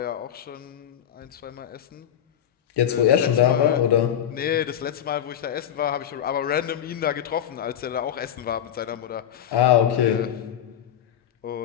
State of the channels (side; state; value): right; quieter; 10.0 dB